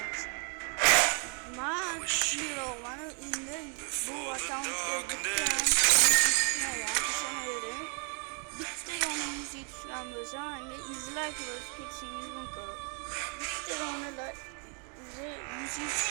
Ma bir olanı indi bu darkness. bitti onun müziği düşüren böyle hangi izlerken kesinlikle kalır. Bitti onu da müziği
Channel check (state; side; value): quieter; left; 39.0 dB